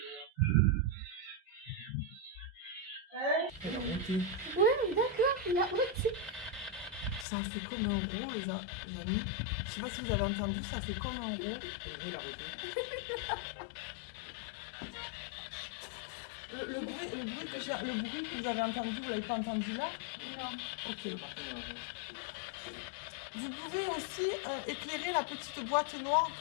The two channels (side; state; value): right; drops out; at 7.2 s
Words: Elle a monté. Ouais, d'accord, il a ôté. Ça a fait comme un rond, les amis. Je sais pas si vous avez entendu, ça fait comme un rond. Il a arrêté. Le bruit que vous avez entendu, vous l'avez pas entendu là? Non. Ok. Vous pouvez aussi éclairer la petite boîte noire